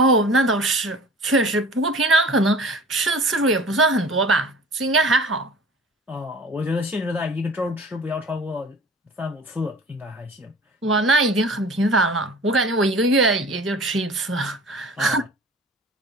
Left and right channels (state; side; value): normal; both; correlation 0.43